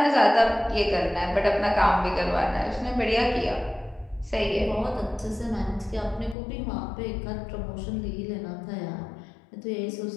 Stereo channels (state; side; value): drops out; right; at 6.4 s